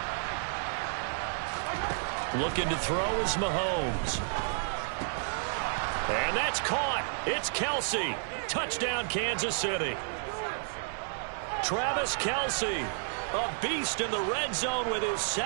Looking to throw is Mahomes. And that's caught. It's Kelsey. Touchdown, Kansas City. Travis Kelsey, a beast in the red zone with his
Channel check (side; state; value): left; silent; 57 dB below the other